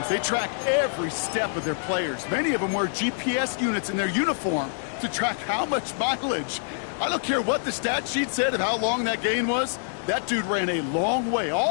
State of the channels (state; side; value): silent; right; digital silence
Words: they track every step of their players. Many of them wear GPS units in their uniform to track how much mileage. I don't care what the stat sheet said of how long that gain was. That dude ran a long way,